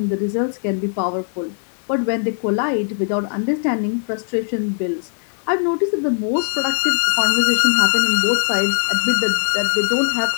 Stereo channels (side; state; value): right; silent; digital silence